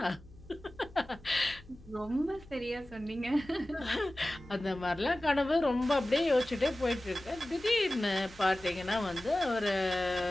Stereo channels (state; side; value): noise; left; hum, 22 dB below the sound